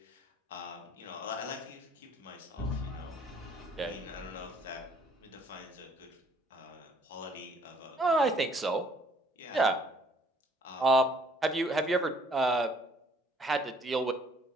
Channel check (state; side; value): normal; both; correlation 0.61